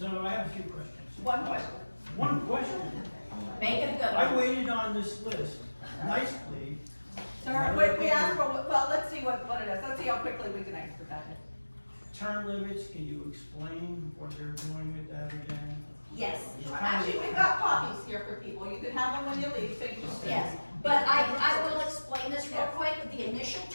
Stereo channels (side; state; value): both; inverted; correlation -1.00